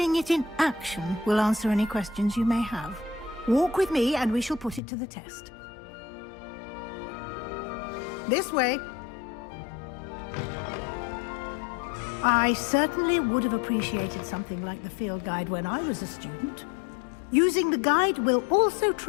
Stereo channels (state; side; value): drops out; right; at 4.8 s